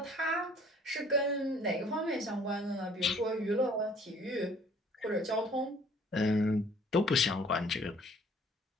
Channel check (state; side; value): normal; both; correlation 0.56